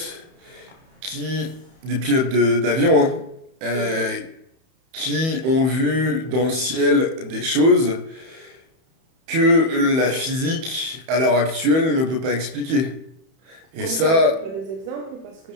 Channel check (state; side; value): late; left; 31 ms